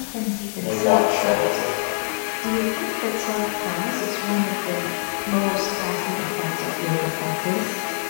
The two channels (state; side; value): silent; right; 61 dB below the other